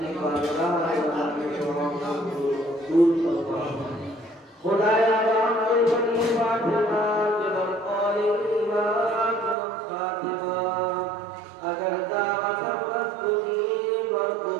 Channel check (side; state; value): left; drops out; at 9.6 s